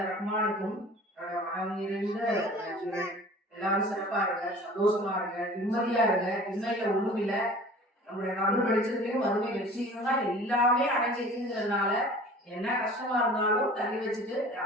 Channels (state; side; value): normal; both; correlation 0.44